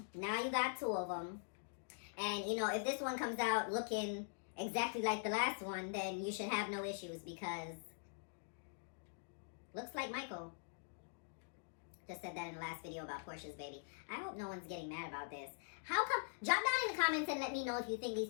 Now you got 2 of them. And, you know, if this one comes out looking exactly like the last one, then you should have no issues because looks like Michael. Just said that in the last video about Portia's baby. I hope no one's getting mad about this. How come? Drop down in the comments and let me know if you think these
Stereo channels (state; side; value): silent; right; digital silence